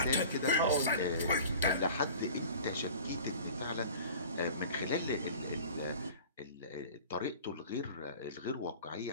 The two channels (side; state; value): both; inverted; correlation -0.42